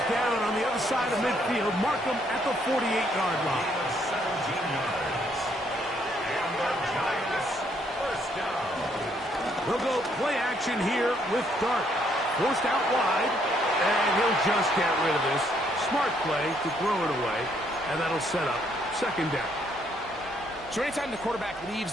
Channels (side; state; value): both; normal; correlation 0.70